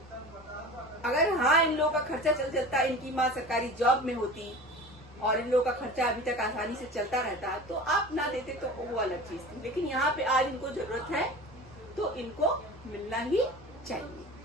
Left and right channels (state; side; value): normal; both; correlation 0.36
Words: अगर हाँ इन लोगों का खर्चा चलता, इनकी माँ सरकारी जॉब में होती और इन लोगों का खर्चा अभी तक आसानी से चलता रहता, तो आप ना देते तो वो अलग चीज थी। लेकिन यहाँ पे आज इनको जरूरत है तो इनको मिलना ही चाहिए।